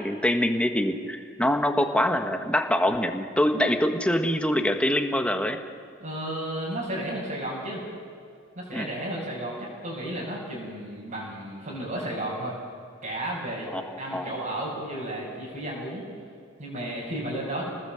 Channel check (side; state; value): both; normal; correlation 0.71